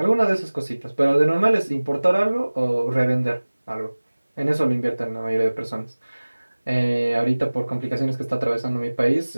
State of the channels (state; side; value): inverted; both; correlation -1.00